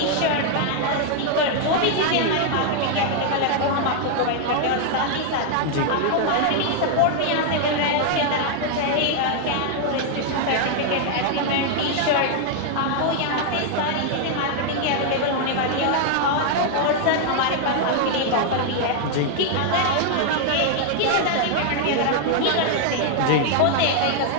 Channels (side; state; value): both; different; correlation 0.00